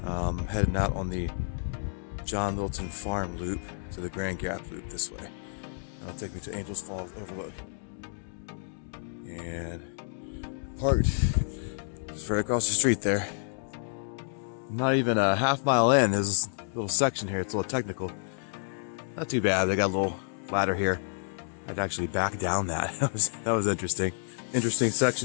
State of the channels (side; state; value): right; silent; digital silence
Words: out on the John Litton Farm loop to the Grand Gap loop this way. That'll take me to Angels Falls Overlook. And parked just right across the street there. Not even a half mile in. There's a little section here. It's a little technical. Not too bad. They got a little ladder here. I'd actually back down that. That was interesting. Interesting